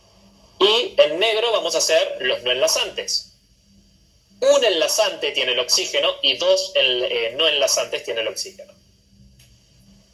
Y en negro vamos a hacer los no enlazantes. Un enlazante tiene el oxígeno y 2 no enlazantes tiene el oxígeno.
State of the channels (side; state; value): both; identical; correlation 1.00